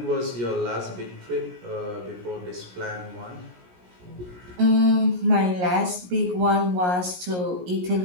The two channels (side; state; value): left; late; 17 ms